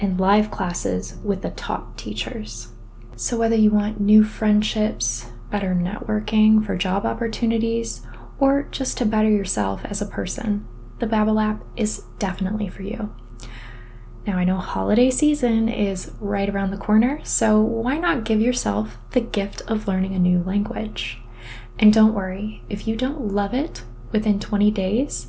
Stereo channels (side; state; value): both; identical; correlation 1.00